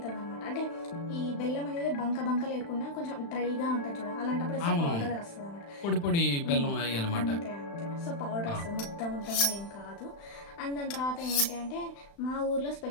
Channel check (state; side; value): late; right; 35 ms